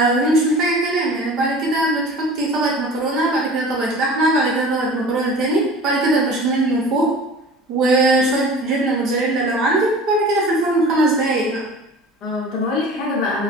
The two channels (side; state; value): both; normal; correlation 0.41